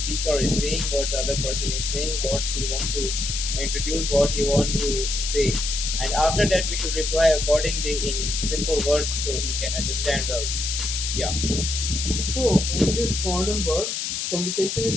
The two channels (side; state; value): left; noise; hiss, 2 dB below the sound